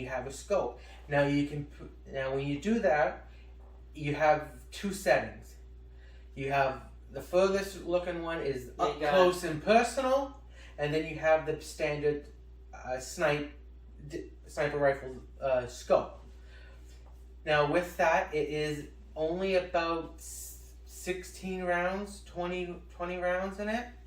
have a scope. Now when you do that, you have 2 settings. You have the furthest looking one is up close and personal, and then you have the standard sniper rifle scope. Now with that, it is only about 16 rounds, 20 rounds in it.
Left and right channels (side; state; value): both; identical; correlation 1.00